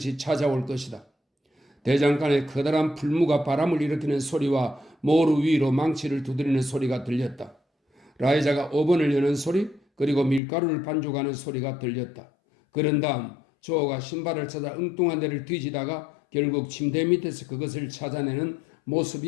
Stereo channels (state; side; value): drops out; right; at 10.4 s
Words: 찾아올 것이다. 대장간에 커다란 풀무가 바람을 일으키는 소리와 모루 위로 망치를 두드리는 소리가 들렸다. 라이자가 오븐을 여는 소리, 그리고 밀가루를 반죽하는 소리가 들렸다. 그런 다음 조가 신발을 찾아 엉뚱한 데를 뒤지다가 결국 침대 밑에서 그것을 찾아내는